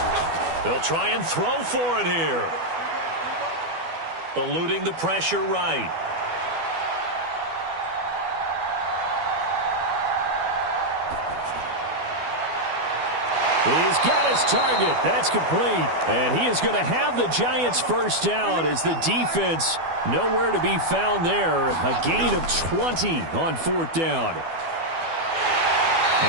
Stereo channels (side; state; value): left; late; 12 ms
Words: They'll try and throw for it here. Eluding the pressure right. He's got his target. That's complete. And he is going to have the Giants first down as the defense nowhere to be found there. A gain of 20 on fourth down.